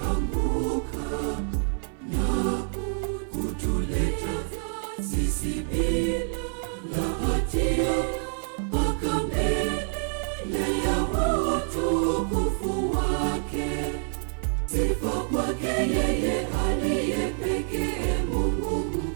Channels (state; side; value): silent; left; 60 dB below the other